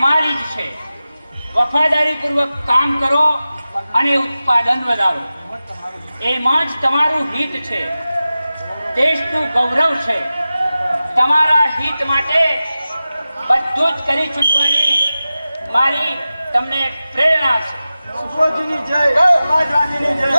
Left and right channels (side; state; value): both; inverted; correlation -0.95